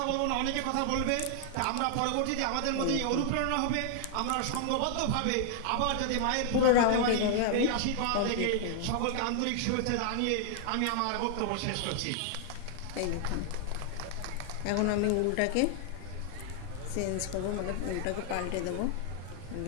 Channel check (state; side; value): different; both; correlation 0.00